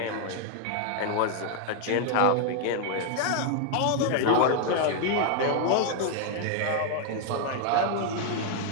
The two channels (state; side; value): different; both; correlation 0.00